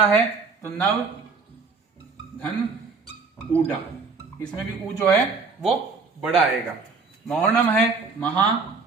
है तो नव धन ऊडा, इसमें भी ऊ जो है वो बड़ा आएगा। महोर्णम है महा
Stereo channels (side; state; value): left; quieter; 4.5 dB